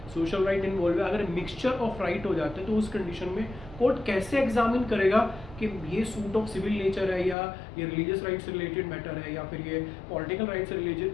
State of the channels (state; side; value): drops out; right; at 7.4 s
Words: सोशल राइट इन्वॉल्व है, अगर मिक्सचर ऑफ राइट हो जाते हैं तो उस कंडीशन में कोर्ट कैसे एग्जामिन करेगा कि ये सूट ऑफ सिविल नेचर है या ये रिलीजियस राइट से रिलेटेड मैटर है या फिर ये पॉलिटिकल राइट से